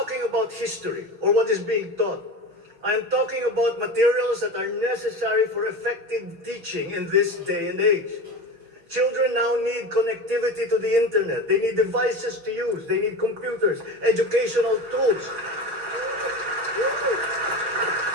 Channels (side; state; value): left; late; 6.0 ms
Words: about history or what is being taught. I am talking about materials that are necessary for effective teaching in this day and age. Children now need connectivity to the internet. They need devices to use. They need computers, educational tools.